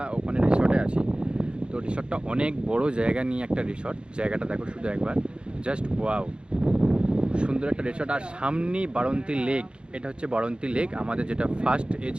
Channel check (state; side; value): late; left; 0.054 ms